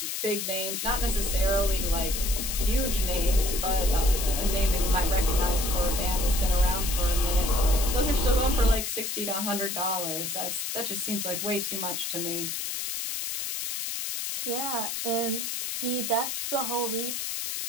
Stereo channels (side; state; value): left; noise; hiss, 3 dB below the sound